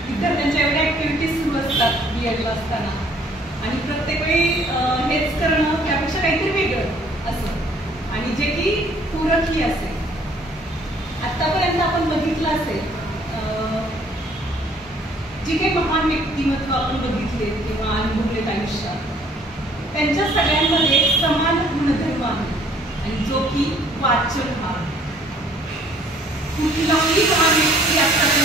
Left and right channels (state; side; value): normal; both; correlation 0.59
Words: विद्यार्थ्यांच्या एवढ्या ॲक्टिव्हिटीज सुरू असतात BEdला असताना, आणि प्रत्येक वेळी हेच करणं त्यापेक्षा काहीतरी वेगळं असं, आणि जे की पूरकही असेल. आतापर्यंत आपण बघितलं असेल जी काही महान व्यक्तिमत्व आपण बघितले किंवा अनुभवलेत आयुष्यात, त्यांच्या सगळ्यांमध्ये समान गुणधर्म आहे, आणि जो की वाचन हा. कुठलाही महान व्यक्ती